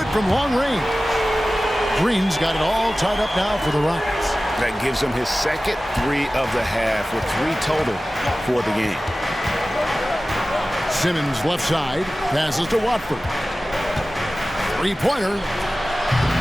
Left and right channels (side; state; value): both; normal; correlation 0.96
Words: from long range. Green's got it all tied up now for the Rockets. That gives him his second 3 of the half with 3 total for the game. Simmons left side, passes to Watford. Three-pointer.